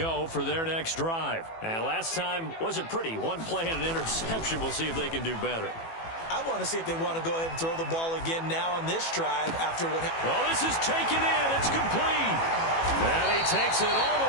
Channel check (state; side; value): late; right; 18 ms